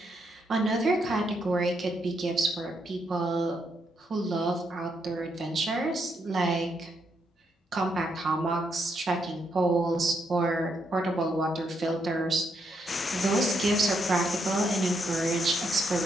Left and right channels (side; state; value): both; normal; correlation 0.78